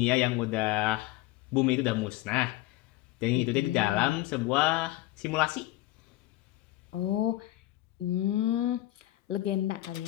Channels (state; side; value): quieter; right; 16.8 dB